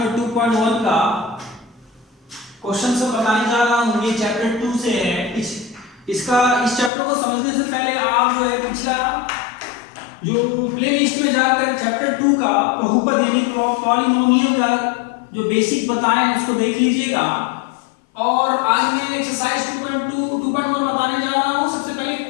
2.1 का क्वेश्चन से बताने जा रहा हूँ। ये चैप्टर 2 से है। इस चैप्टर को समझने से पहले आप जो है पिछला जो प्लेलिस्ट में जाकर चैप्टर 2 का बहुपद यानी पॉलिनोमियल का जो बेसिक बताए हैं उसको देख लीजिएगा। और आज मैं एक्सरसाइज 2.1 बताने जा रहा हूँ। सबसे पहले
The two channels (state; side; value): drops out; right; at 6.9 s